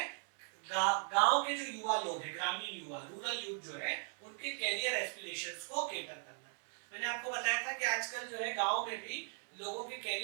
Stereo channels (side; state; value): left; silent; 52 dB below the other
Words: गांव के जो युवा लोग हैं, ग्रामीण युवा, रूरल यूथ जो है, उनके कैरियर एस्पिरेशंस को केटर करना। मैंने आपको बताया था कि आजकल जो है गांव में भी लोगों के